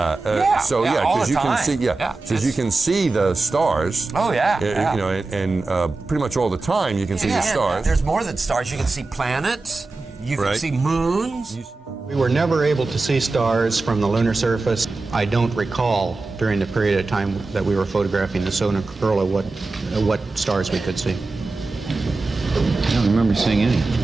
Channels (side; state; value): left; quieter; 3.5 dB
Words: you can see, because you can see the stars. Oh yeah, you know, and pretty much all the time you can see the stars. There's more than stars. You can see planets. You can see moons. We were never able to see stars from the lunar surface. I don't recall during the period of time that we were photographing the solar corona what stars we could see. I don't remember seeing any.